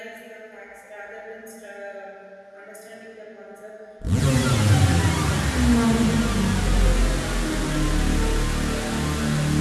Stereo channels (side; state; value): both; identical; correlation 1.00